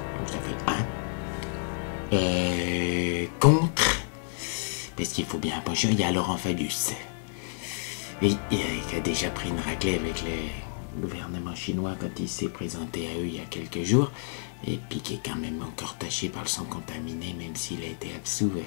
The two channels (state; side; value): silent; right; digital silence